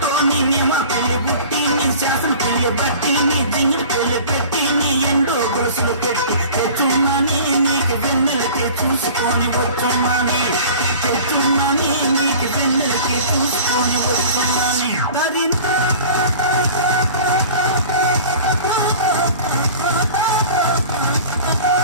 నిన్నే మా పెళ్లి బుట్టి నీ చేసిన పిల్లి బట్టి నీ జింగిడి పెళ్లి పెట్టి నీ ఎండో గొలుసులు పెట్టి తెచ్చున్నానే నీకు వెన్నెలకి చూసుకొని వచ్చున్నానే తెచ్చున్నానే నీకు వెన్నెలకి చూసుకొని వచ్చున్నానే దరినా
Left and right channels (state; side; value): inverted; both; correlation -0.42